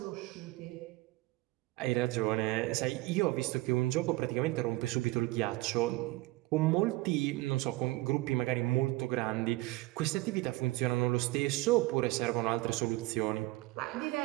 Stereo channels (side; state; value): left; quieter; 20.2 dB